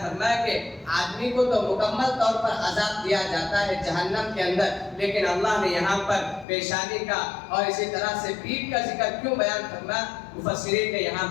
فرمایا کہ آدمی کو تو مکمل طور پر عذاب دیا جاتا ہے جہنم کے اندر، لیکن اللہ نے یہاں پر پیشانی کا اور اسی طرح سے پیٹھ کا ذکر کیوں بیان فرمایا؟ مفسرین نے یہاں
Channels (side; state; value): right; drops out; at 6.5 s